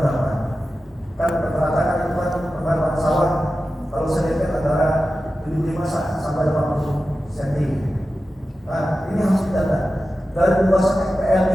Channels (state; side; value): normal; both; correlation 0.93